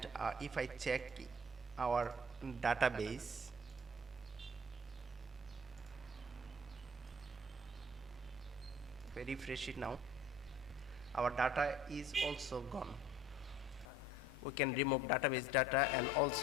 if I check our database, if I refresh it now, our data is also gone. We can remove database data and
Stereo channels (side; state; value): both; normal; correlation 0.51